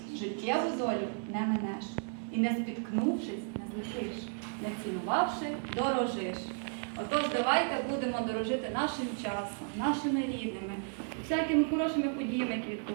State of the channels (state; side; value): silent; left; 55 dB below the other